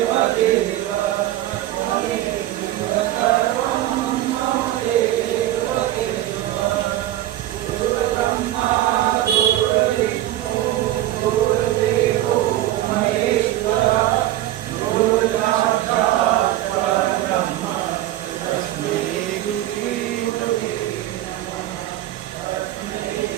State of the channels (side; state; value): left; quieter; 14.3 dB